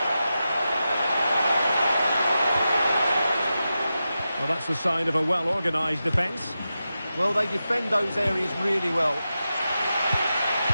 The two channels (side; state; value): both; inverted; correlation -0.91